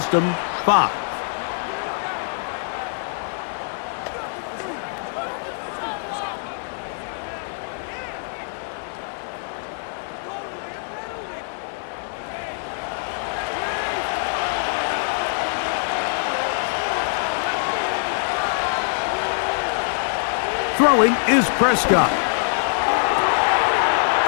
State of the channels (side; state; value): right; silent; digital silence